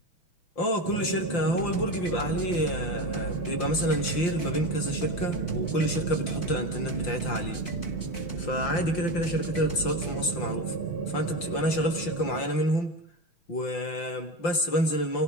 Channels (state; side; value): late; right; 5.8 ms